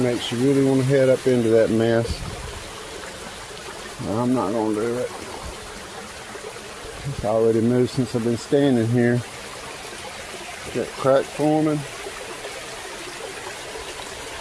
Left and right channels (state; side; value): identical; both; correlation 1.00